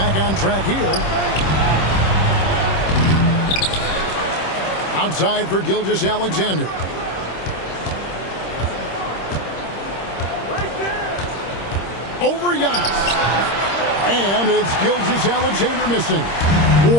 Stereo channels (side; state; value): right; late; 26 ms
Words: on track here. Outside for Gilgeous-Alexander. Over Giannis. And it's Gilgeous-Alexander missing.